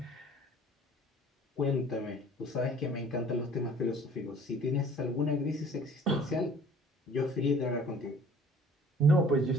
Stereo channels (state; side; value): normal; both; correlation 0.52